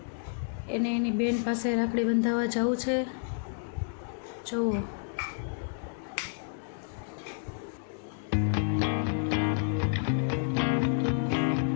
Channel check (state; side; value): silent; right; digital silence